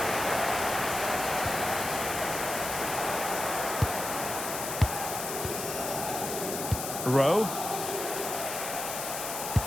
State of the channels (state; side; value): noise; left; hiss, 5 dB below the sound